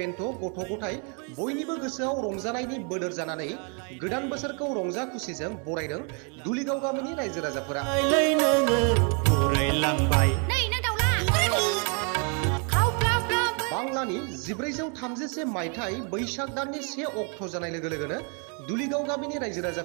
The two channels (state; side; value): quieter; left; 38.4 dB